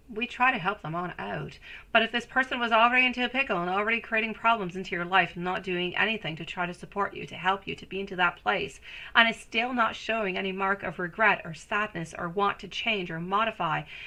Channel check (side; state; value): both; identical; correlation 1.00